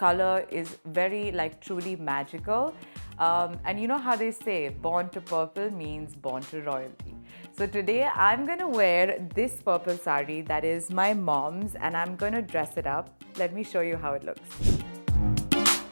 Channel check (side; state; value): both; inverted; correlation -1.00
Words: is very truly magical. And you know how they say, born to purple means born to royalty. So today I'm gonna wear this purple sari that is my mom's, and I'm gonna dress it up. Let me show you how it looks.